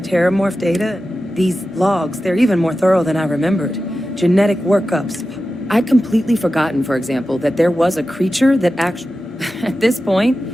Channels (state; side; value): normal; both; correlation 0.93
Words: Terramorph data. These logs, they're even more thorough than I remembered. Genetic workups. I'd completely forgotten, for example, that there was a creature that actually... At this point,